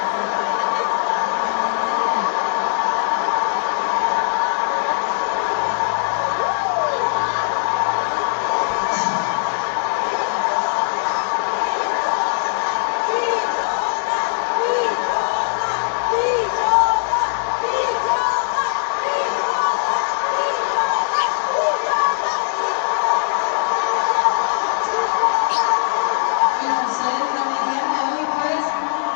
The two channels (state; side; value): silent; right; digital silence